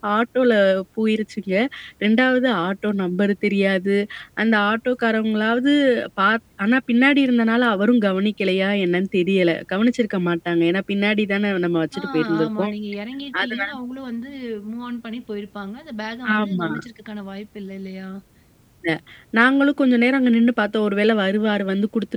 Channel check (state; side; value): identical; both; correlation 1.00